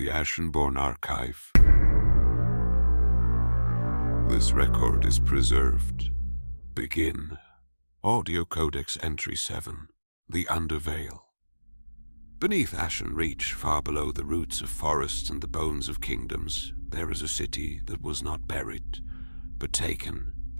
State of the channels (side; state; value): both; inverted; correlation -1.00